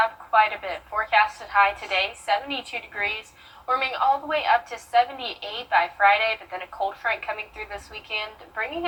up quite a bit. Forecasted high today, 72 degrees. Warming all the way up to 78 by Friday, but then a cold front coming through this weekend, bringing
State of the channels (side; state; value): both; identical; correlation 1.00